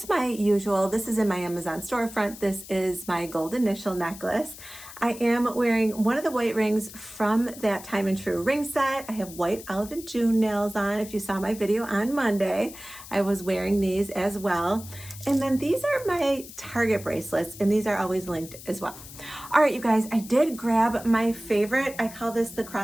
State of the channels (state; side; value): noise; left; hiss, 15 dB below the sound